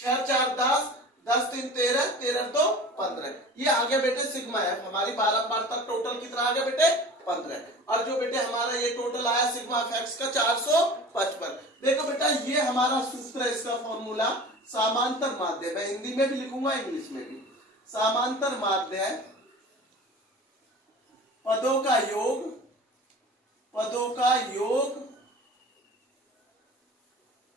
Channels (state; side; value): normal; both; correlation 0.39